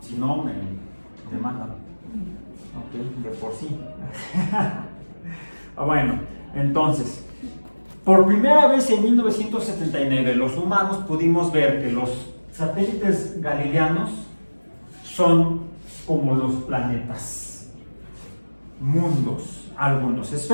si no me demandan. Ok, de por sí. Bueno, entonces, por primera vez en 1979 los humanos pudimos ver que los satélites galileanos son como los planetas, mundos, algunos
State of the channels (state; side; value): inverted; both; correlation -1.00